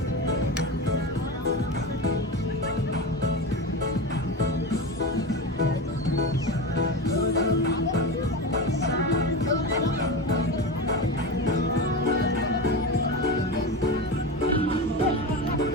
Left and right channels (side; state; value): both; normal; correlation 0.22